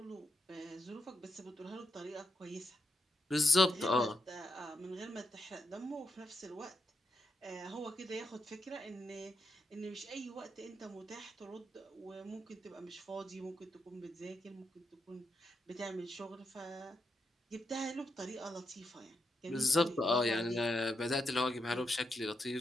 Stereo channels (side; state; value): both; normal; correlation 0.83